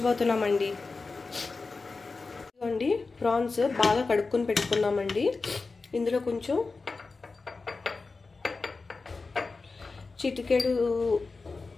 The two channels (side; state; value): right; quieter; 4.0 dB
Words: ఇదిగోండి ప్రాన్స్ బాగా కడుక్కొని పెట్టుకున్నామండి ఇందులో కొంచెం చిటికెడు